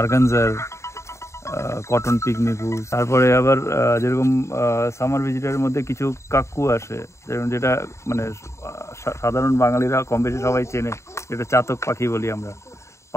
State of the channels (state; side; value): late; right; 0.14 ms